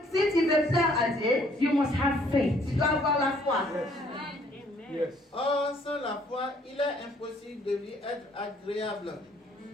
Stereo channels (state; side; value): normal; both; correlation 0.63